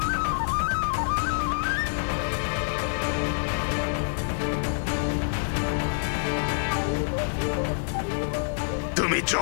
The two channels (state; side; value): silent; right; digital silence